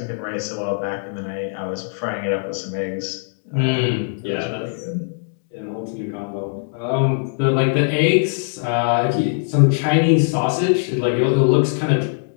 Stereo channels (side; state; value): right; silent; digital silence